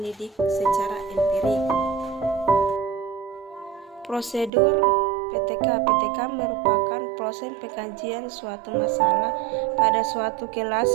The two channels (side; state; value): left; drops out; at 4.5 s